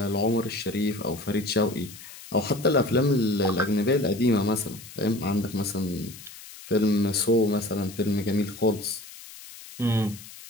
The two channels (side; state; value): left; noise; hiss, 16 dB below the sound